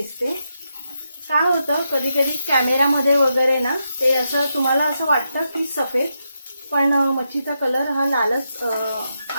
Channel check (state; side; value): inverted; both; correlation -0.84